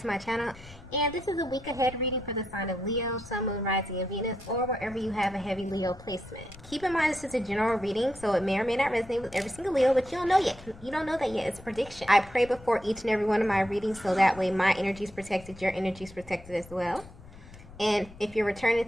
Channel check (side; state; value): left; noise; rumble, 19 dB below the sound